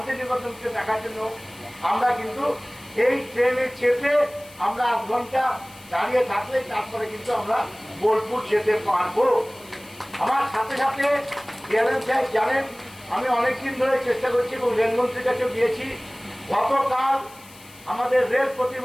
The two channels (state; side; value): noise; left; hiss, 22 dB below the sound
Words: দেখার জন্য আমরা কিন্তু এই ট্রেনে চেপে আমরা 8 ঘন্টা দাঁড়িয়ে থাকলে তারপরে কিন্তু আমরা বোলপুর যেতে পারবো। আমার সাথে সাথে ডিআরএম সাহেব জানেন আমি অনেকদিন ধরে চেষ্টা করছি এবং রেলমন্ত্রীর কাছেও গিয়েছি। গতকাল আমাদের রেল